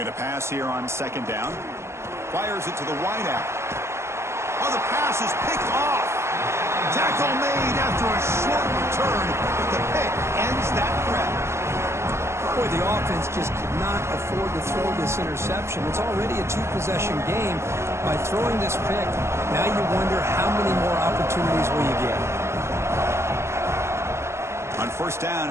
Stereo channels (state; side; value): late; left; 0.13 ms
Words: to pass here on second down. Fires it to the wideout. Oh, the pass is picked off. Tackle made after a short return, but the pick ends that threat. Boy, the offense just could not afford to throw this interception. It's already a two-possession game. By throwing this pick, now you wonder how many more opportunities will you get. On first